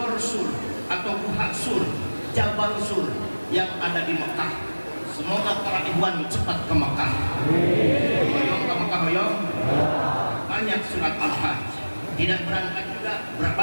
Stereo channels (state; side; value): inverted; both; correlation -1.00